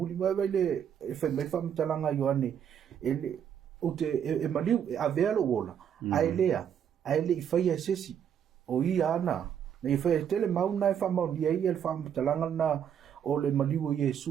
mai le e fa mai fa mtalanga Ioane ele o te e maliu a velo wola ai le i fai e sesi o i ana na i fai tele mauna e fa mauni ai el fa mtalanga na o le maliu o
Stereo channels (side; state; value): left; quieter; 8.7 dB